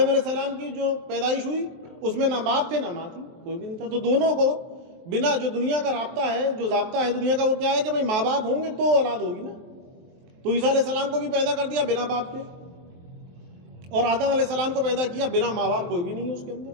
علیہ السلام کی جو پیدائش ہوئی اس میں نہ باپ تھے نہ ماں تھی، کوئی بھی نہیں تھا. تو دونوں کو بنا جو دنیا کا رابطہ ہے، جو ضابطہ ہے دنیا کا، وہ کیا ہے کہ بھائی ماں باپ ہوں گے تو اولاد ہوگی نا. تو عیسیٰ علیہ السلام کو بھی پیدا کر دیا بنا باپ کے، اور آدم علیہ السلام کو پیدا کیا بنا ماں باپ، کوئی بھی نہیں ہے اس کے اندر.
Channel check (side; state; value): left; late; 23 ms